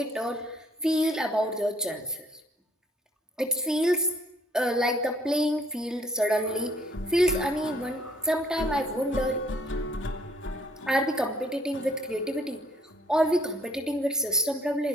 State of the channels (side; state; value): both; normal; correlation 0.63